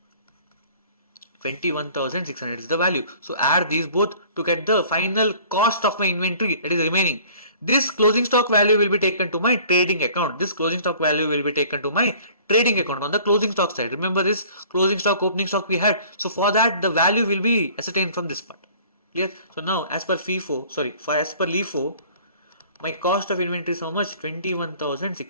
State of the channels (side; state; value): both; inverted; correlation -0.51